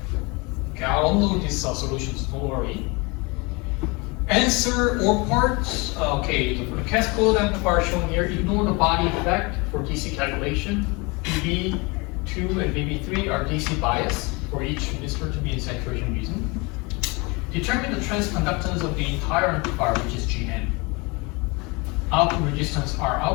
Okay, I'll unload these solutions, don't worry. Answer or parts. Okay, for the cascade amplifier shown here, ignore the body effect for DC calculation. VB2 and VB3 are DC bias for each resistor to be in saturation region. Determine the transconductance of the entire amplifier, which is Gn. Output resistance R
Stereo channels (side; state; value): right; quieter; 27.3 dB